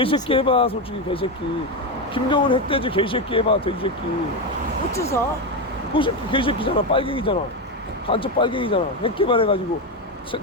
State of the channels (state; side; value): normal; both; correlation 0.12